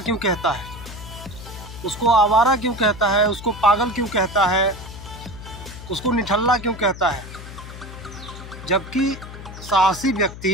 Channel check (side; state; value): left; noise; hum, 13 dB below the sound